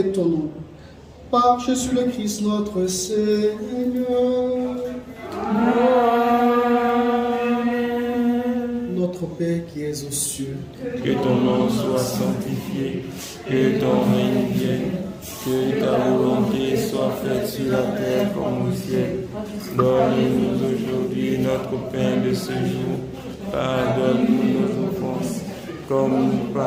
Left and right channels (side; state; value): both; identical; correlation 1.00